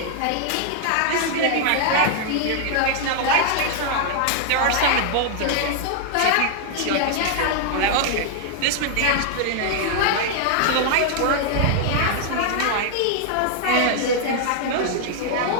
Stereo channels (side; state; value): both; different; correlation 0.00